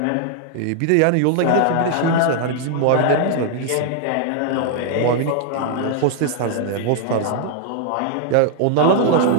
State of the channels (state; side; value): different; both; correlation 0.00